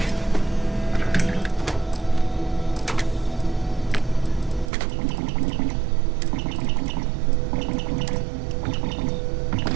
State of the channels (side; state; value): left; drops out; at 4.7 s